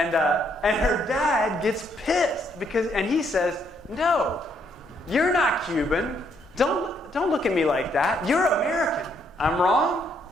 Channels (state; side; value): normal; both; correlation 0.72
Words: her dad gets pissed and he says, no, you're not Cuban. Don't look at me like that. You're American. I'm wrong?